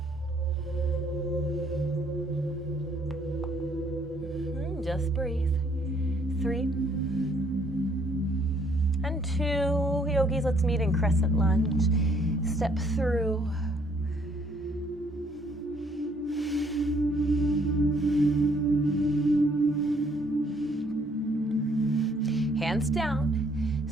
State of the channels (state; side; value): normal; both; correlation 0.65